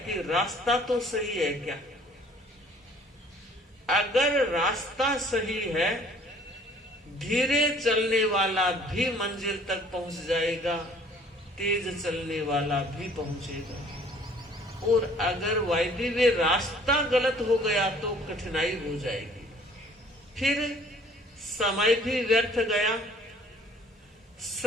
कि रास्ता तो सही है क्या। अगर रास्ता सही है, धीरे चलने वाला भी मंजिल तक पहुंच जाएगा, तेज चलने वाला भी पहुंचेगा। और अगर वायदे वे रास्ता गलत हो गया तो कठिनाई हो जाएगी। फिर समय भी व्यर्थ गया,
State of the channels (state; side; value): normal; both; correlation 0.55